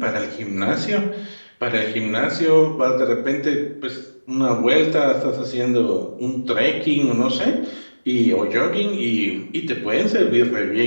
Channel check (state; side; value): inverted; both; correlation -1.00